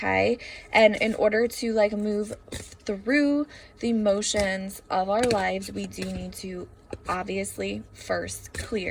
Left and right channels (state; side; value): identical; both; correlation 1.00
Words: And in order to like move through the motions of our lives, we do need to obviously first